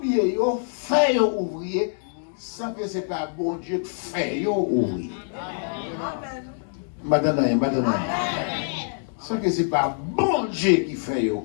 ils ont fait ouvrier, sans que ce n'est pas bon Dieu qui fait ouvrier. Maintenant, sans que ce n'est pas bon Dieu qui fait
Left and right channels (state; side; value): silent; right; digital silence